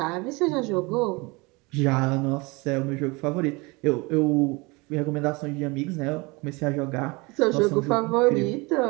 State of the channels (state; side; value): quieter; left; 25.9 dB